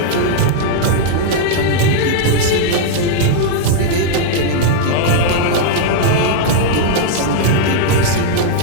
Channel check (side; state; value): both; different; correlation -0.01